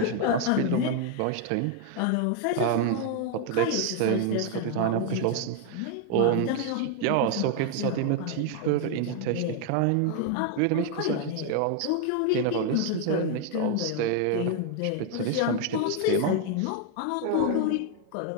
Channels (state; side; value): different; both; correlation 0.01